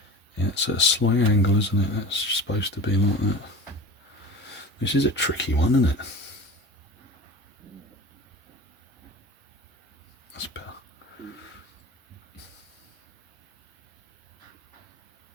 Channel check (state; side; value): normal; both; correlation 0.34